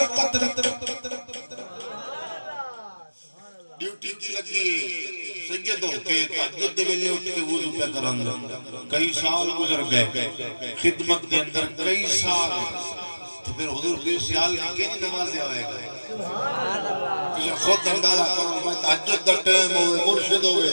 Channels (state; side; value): inverted; both; correlation -1.00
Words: رکھی. ڈیوٹی کی لگی سیدوں کے تہجد دے ویلے اٹھ کے وضو پہ کرن, کئی سال گزر گئے خدمت کے اندر, کئی سال. پھر حضور پیر سیال کی کئی نمازیں ہوئے گئے. تجھے خود اندازہ کرو, میں تہجد دا ٹائم ہوئے, مرشد ہوئے